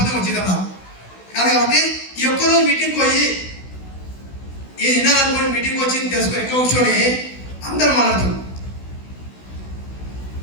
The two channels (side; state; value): right; late; 16 ms